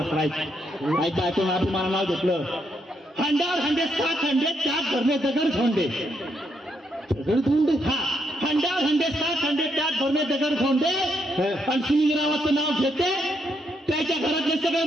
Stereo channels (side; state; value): both; normal; correlation 0.77